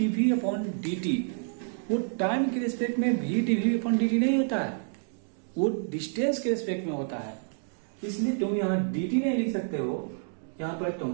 अपॉन dt वो टाइम के रिस्पेक्ट में v dv अपॉन dt नहीं होता है, वो डिस्टेंस के रिस्पेक्ट में होता है। इसलिए तुम यहाँ dt नहीं लिख सकते हो, यहाँ पर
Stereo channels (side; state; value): left; silent; 59 dB below the other